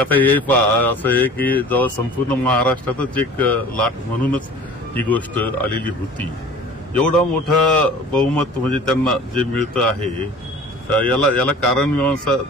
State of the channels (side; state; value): both; normal; correlation 0.43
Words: हे असं आहे की जेव्हा संपूर्ण महाराष्ट्रातच एक लाट म्हणूनच ही गोष्ट आलेली होती, एवढा मोठा बहुमत म्हणजे त्यांना जे मिळतं आहे याला कारण मीमांसा